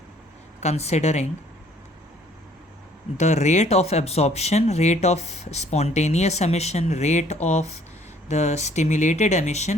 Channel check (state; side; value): normal; both; correlation 0.59